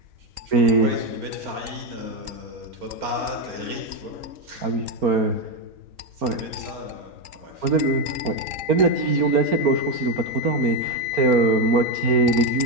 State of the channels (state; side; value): late; left; 3.8 ms